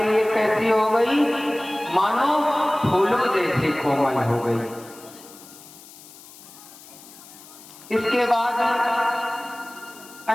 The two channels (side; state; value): left; noise; hiss, 20 dB below the sound